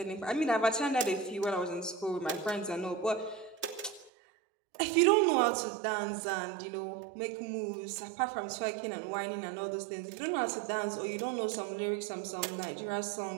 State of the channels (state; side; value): drops out; left; at 4.1 s